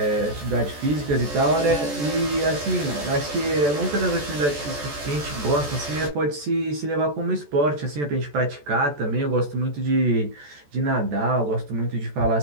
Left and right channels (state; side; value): late; left; 14 ms